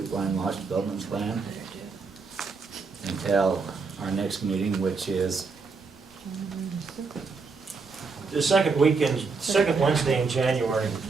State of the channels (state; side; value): quieter; left; 4.6 dB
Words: Lodge Development Plan until our next meeting, which is The second weekend, second Wednesday in January.